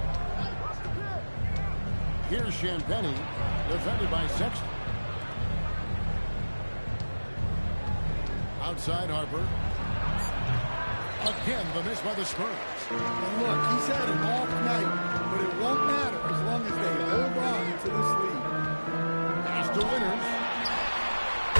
Here's Champagnie, defended by Sexton. Outside Harper. Again, the miss by the Spurs. And look, he's had an off night, but it won't matter as long as they hold on to this lead. Pass to Winters.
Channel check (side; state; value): both; inverted; correlation -1.00